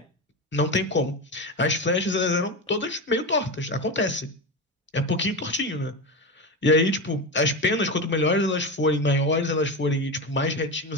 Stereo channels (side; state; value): both; normal; correlation 0.20